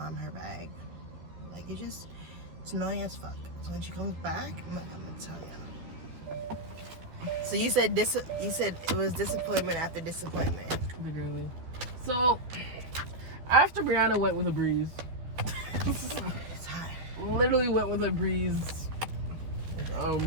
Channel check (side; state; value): left; late; 12 ms